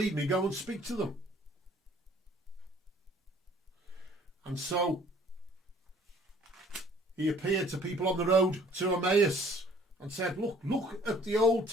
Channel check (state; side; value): normal; both; correlation 0.56